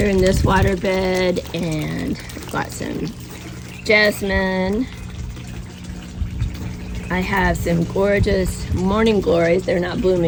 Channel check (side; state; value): both; identical; correlation 1.00